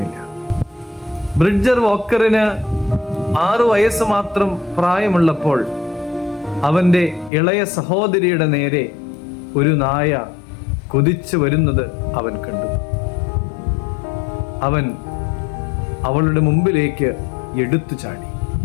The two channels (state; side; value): drops out; right; at 7.3 s